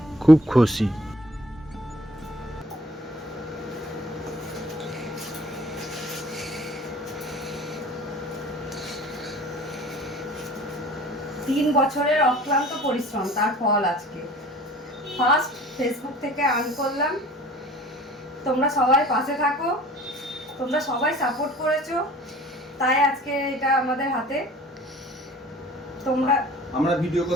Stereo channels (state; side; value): normal; both; correlation 0.48